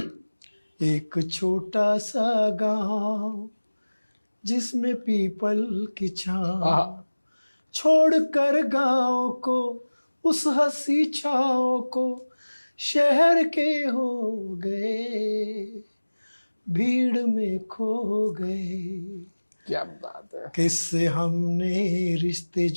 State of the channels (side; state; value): both; inverted; correlation -1.00